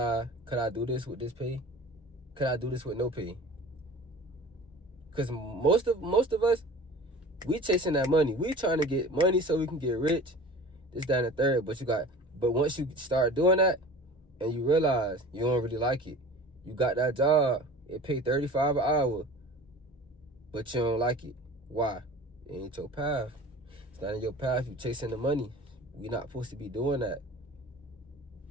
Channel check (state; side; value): normal; both; correlation 0.40